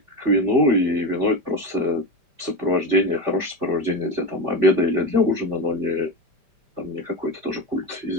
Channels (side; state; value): left; late; 5.0 ms